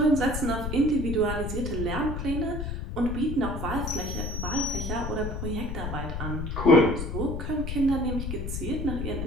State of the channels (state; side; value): noise; left; rumble, 4 dB below the sound